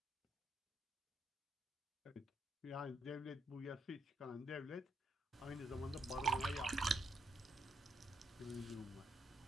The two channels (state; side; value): normal; both; correlation 0.76